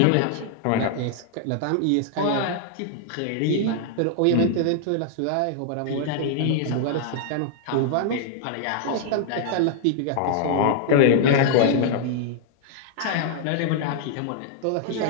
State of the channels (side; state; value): both; different; correlation -0.01